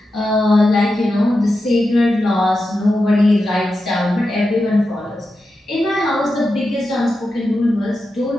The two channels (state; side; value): normal; both; correlation 0.90